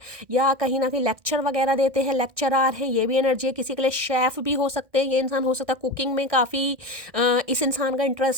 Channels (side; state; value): left; late; 1.6 ms